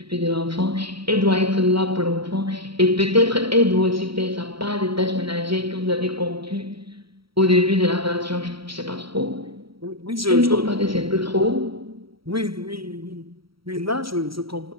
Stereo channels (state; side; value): late; left; 0.75 ms